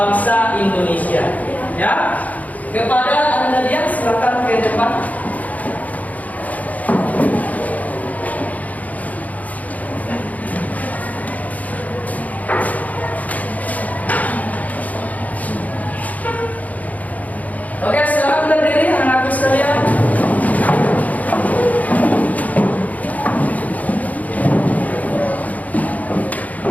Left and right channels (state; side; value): late; right; 0.075 ms